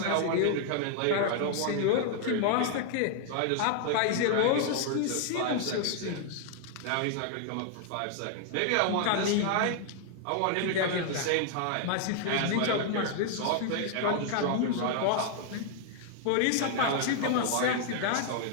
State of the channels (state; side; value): different; both; correlation 0.00